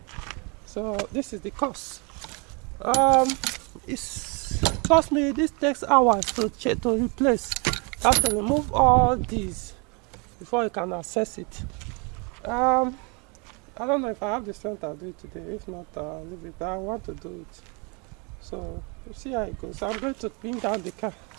So this is the cost. It's cost me. This takes hours to replace. You have to remove all these before you can access it. I don't know if I have the strength to do it today. If not, I'll leave it. But I want to do it. So we'll see how it goes. I'm going to bring down the car,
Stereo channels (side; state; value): left; quieter; 32.3 dB